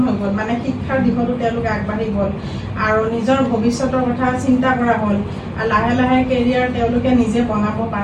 হৈ গ'ল। শিক্ষাৰ দিশতো তেওঁলোকে আগবাঢ়ি গ'ল আৰু নিজৰ ভৱিষ্যতৰ কথা চিন্তা কৰা হ'ল। লাহে লাহে কেৰিয়াৰ তেওঁলোকে নিজে বনাব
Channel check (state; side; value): identical; both; correlation 1.00